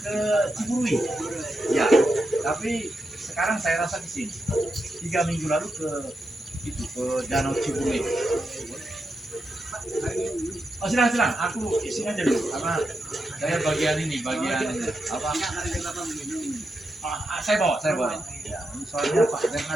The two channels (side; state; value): both; normal; correlation 0.86